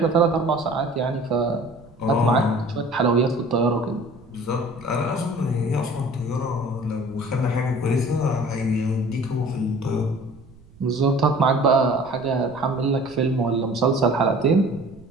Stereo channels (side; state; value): right; noise; rumble, 24 dB below the sound